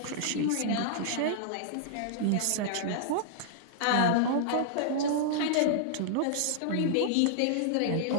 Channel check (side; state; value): both; different; correlation -0.01